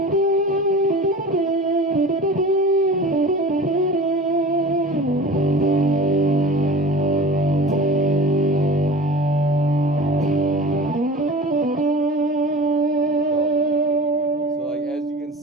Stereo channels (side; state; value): both; normal; correlation 0.37